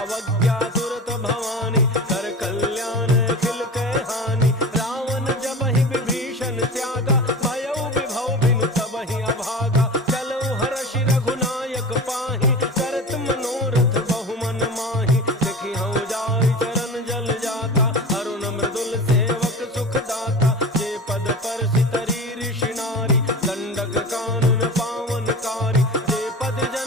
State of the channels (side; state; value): both; normal; correlation 0.32